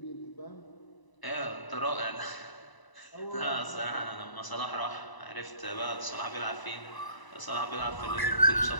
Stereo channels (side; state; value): right; late; 1.0 ms